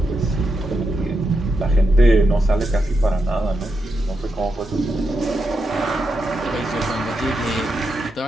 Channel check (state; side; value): normal; both; correlation 0.85